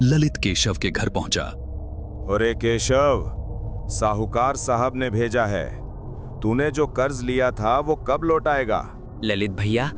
ललित केशव के घर पहुंचा। अरे केशव, साहूकार साहब ने भेजा है। तूने जो कर्ज लिया था वो कब लौटाएगा? ललित भैया,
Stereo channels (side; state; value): both; identical; correlation 1.00